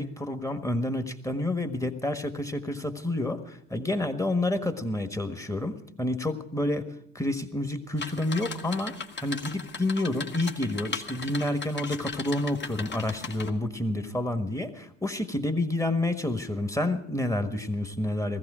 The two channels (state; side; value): normal; both; correlation 0.73